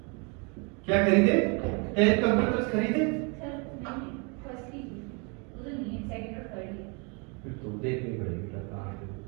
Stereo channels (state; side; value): quieter; left; 33.5 dB